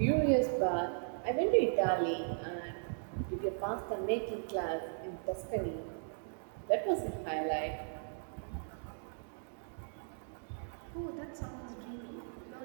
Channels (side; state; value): left; silent; digital silence